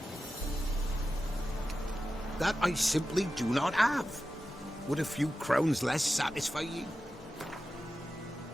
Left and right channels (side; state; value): both; normal; correlation 0.92